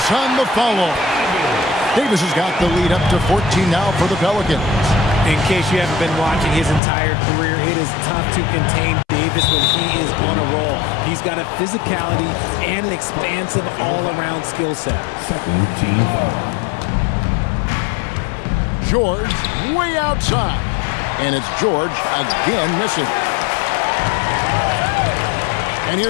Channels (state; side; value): drops out; right; at 6.8 s